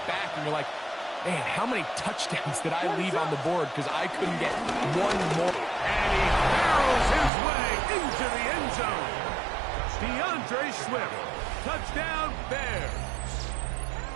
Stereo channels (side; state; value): left; drops out; at 7.3 s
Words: back and you're like, man, how many touchdowns did I leave on the board because I couldn't get one more? And he barrels his way into the end zone. DeAndre Swift, touchdown Bears.